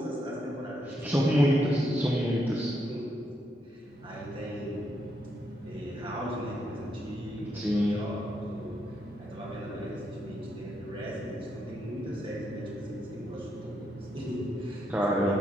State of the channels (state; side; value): normal; both; correlation 0.79